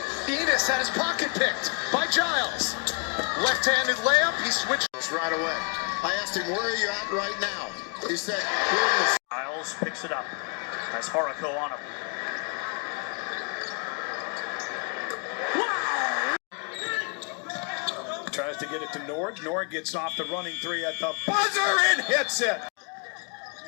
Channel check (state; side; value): quieter; right; 36.0 dB